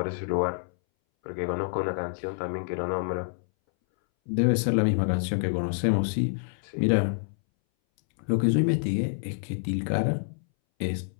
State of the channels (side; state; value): right; silent; 60 dB below the other